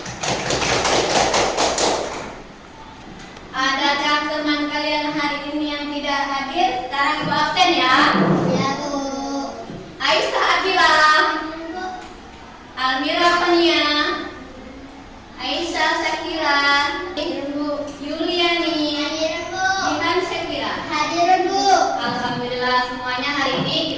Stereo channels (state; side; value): identical; both; correlation 1.00